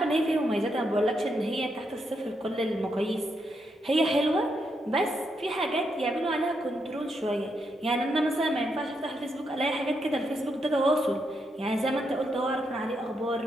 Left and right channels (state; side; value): normal; both; correlation 0.80